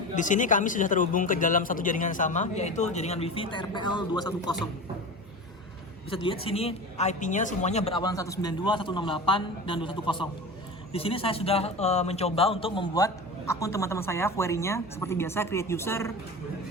di sini kami sudah terhubung ke dalam satu jaringan sama, yaitu jaringan WiFi TRPL 210. Bisa dilihat sini IP-nya semuanya berawalan 192, 168, dan 210. Di sini saya sudah mencoba untuk membuat akun teman-teman saya, query-nya seperti biasa, create user,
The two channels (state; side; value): normal; both; correlation 0.30